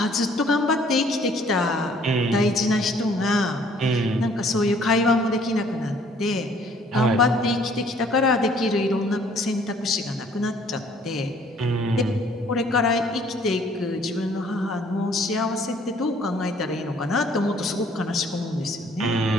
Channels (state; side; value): normal; both; correlation 0.59